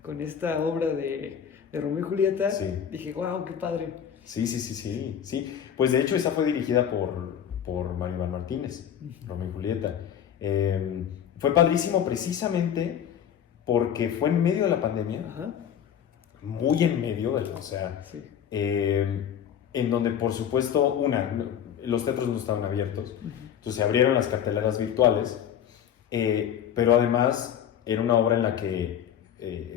esta obra de Romeo y Julieta, Sí. dije, wow, qué padre. Sí. Pues de hecho esa fue dirigida por Mario Iván Martínez, Romeo y Julieta. Fue padrísimo precisamente porque fue en medio de la pandemia, Ajá, muy en medio, o sea, sí. en donde por supuesto, los teatros no estaban abiertos, entonces se abrieron las carteleras virtuales, pero además era una obra en la que,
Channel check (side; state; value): right; quieter; 9.1 dB